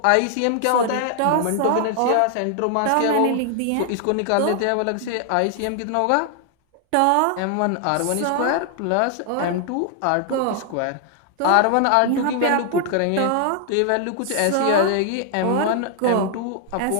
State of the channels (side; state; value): both; different; correlation 0.00